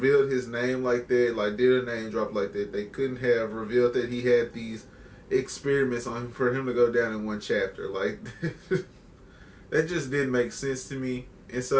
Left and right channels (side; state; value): both; identical; correlation 1.00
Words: his name like that, like did a name drop like that. They couldn't have revealed that he had these experiments on him for him to go down in one chapter. Like that just didn't make sense to me. And